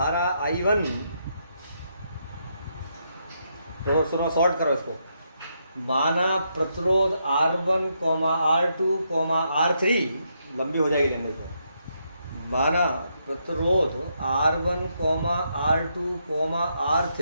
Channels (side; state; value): both; inverted; correlation -0.79